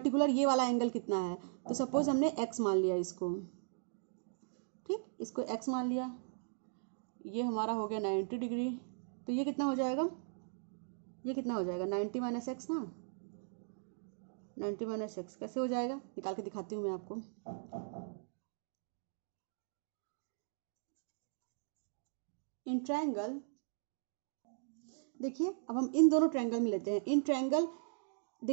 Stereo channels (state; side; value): silent; left; digital silence